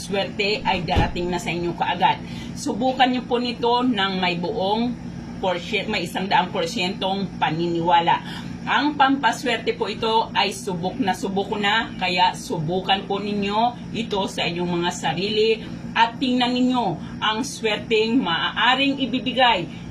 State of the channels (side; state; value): both; identical; correlation 1.00